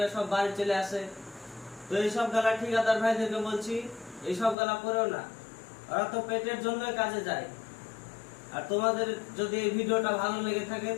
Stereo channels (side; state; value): right; drops out; at 4.5 s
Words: সব বাড়ি চলে আসে। তো এইসব গালা ঠিকাদার ভাইদেরকে বলছি, এইসব গালা করেও না, ওরা তো পেটের জন্যই কাজে যায়। আর তোমাদের যদি এই ভিডিওটা ভালো লেগে থাকে